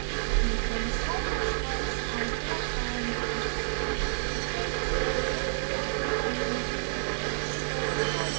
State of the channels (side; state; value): left; silent; digital silence